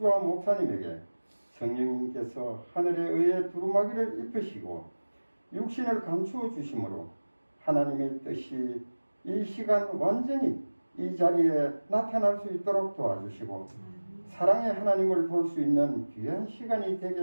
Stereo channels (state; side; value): inverted; both; correlation -1.00